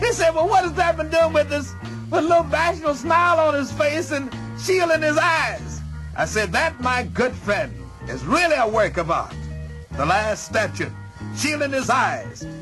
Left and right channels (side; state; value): both; identical; correlation 1.00